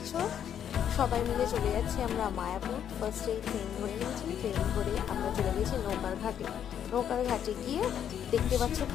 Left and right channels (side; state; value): right; quieter; 9.2 dB